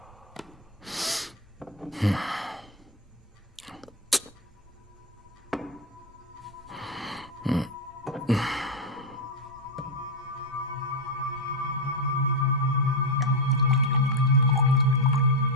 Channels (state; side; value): normal; both; correlation 0.05